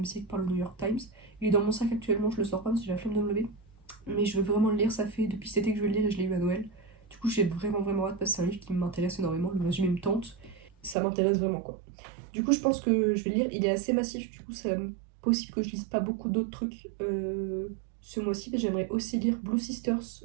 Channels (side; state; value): left; drops out; at 11.0 s